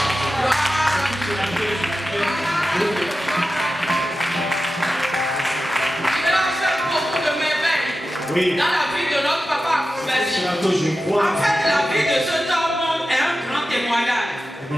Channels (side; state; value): both; normal; correlation 0.93